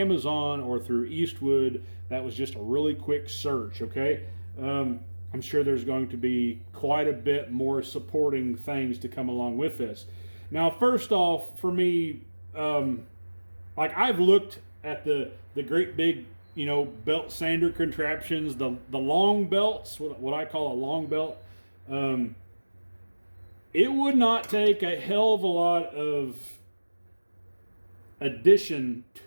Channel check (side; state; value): both; inverted; correlation -1.00